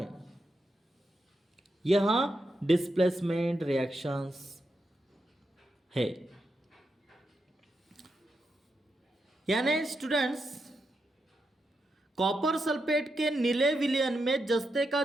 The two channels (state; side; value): normal; both; correlation 0.85